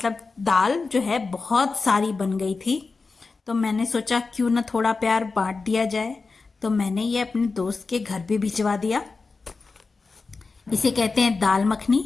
दाल जो है बहुत सारी बन गई थी, तो मैंने सोचा क्यों ना थोड़ा प्यार बांट दिया जाए। तो मैंने ये अपने दोस्त के घर भी भिजवा दिया। इसे कहते हैं दाल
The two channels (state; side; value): quieter; right; 4.2 dB